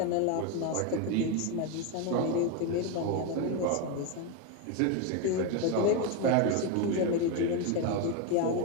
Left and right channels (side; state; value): both; different; correlation 0.02